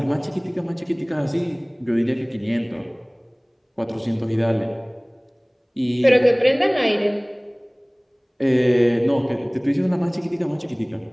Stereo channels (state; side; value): identical; both; correlation 1.00